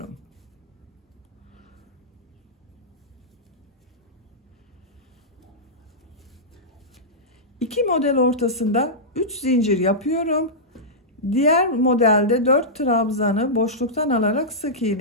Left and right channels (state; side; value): normal; both; correlation -0.12